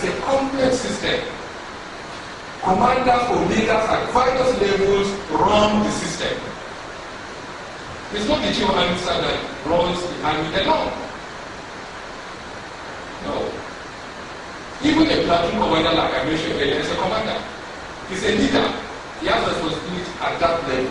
a complex system. Commanders or leaders at various levels run the system. It's not the chief of army staff that runs the army alone. No. Even a platoon commander, like I mentioned earlier, is a commander. He's a leader. He has responsibility at that level.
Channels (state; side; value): identical; both; correlation 1.00